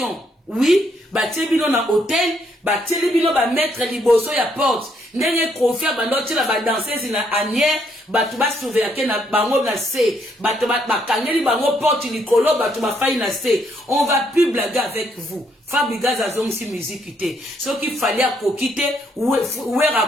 oui ba tebino na hôtel ba telebino ba mettre liboso ya porte ndenge confia ba ndoti la ba danseuse na anière batu ba surveiller na bango na C batu ba kangeli bango porte likolo batu ba faille na C on va plus blaguer avec vous Fabregas azongisi musique te soki fallait à kokite Wera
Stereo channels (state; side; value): normal; both; correlation 0.72